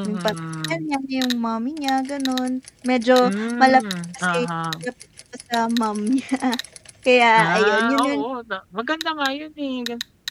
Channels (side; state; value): both; identical; correlation 1.00